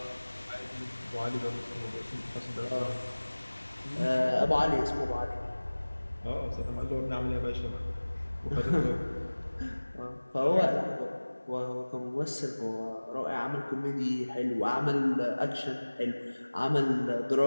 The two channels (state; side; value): inverted; both; correlation -1.00